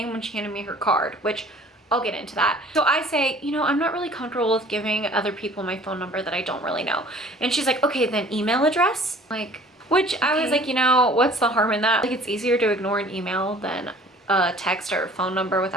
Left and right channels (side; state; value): both; normal; correlation 0.50